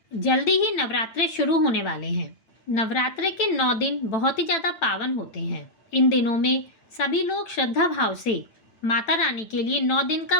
जल्दी ही नवरात्रे शुरू होने वाले हैं। नवरात्रे के 9 दिन बहुत ही ज़्यादा पावन होते हैं। इन दिनों में सभी लोग श्रद्धा भाव से माता रानी के लिए 9 दिन का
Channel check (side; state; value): right; late; 9.0 ms